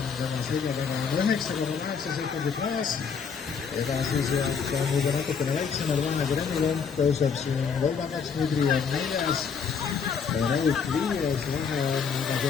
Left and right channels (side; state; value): right; quieter; 6.3 dB